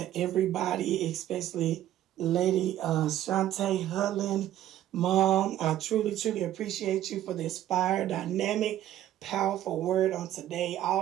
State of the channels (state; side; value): quieter; left; 12.7 dB